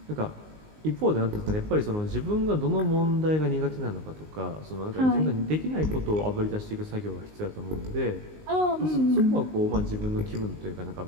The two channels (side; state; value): left; late; 19 ms